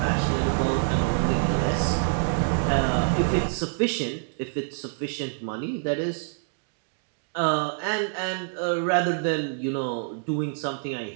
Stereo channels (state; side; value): silent; left; digital silence